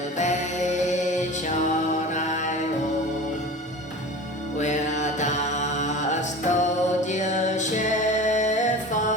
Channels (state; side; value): normal; both; correlation 0.35